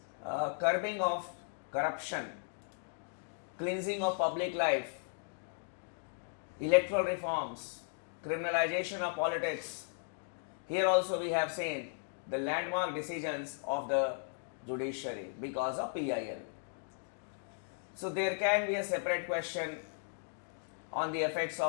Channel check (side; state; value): right; silent; digital silence